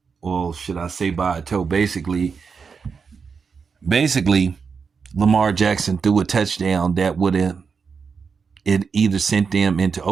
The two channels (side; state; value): left; quieter; 5.6 dB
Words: well, should I say by a toe? Basically, Lamar Jackson threw a touchdown that would have it either sent them into